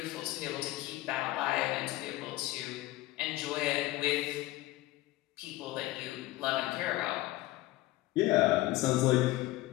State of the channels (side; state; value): right; quieter; 17.5 dB